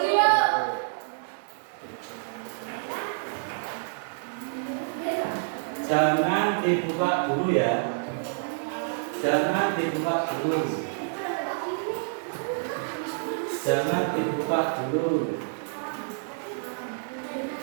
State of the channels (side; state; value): left; silent; 59 dB below the other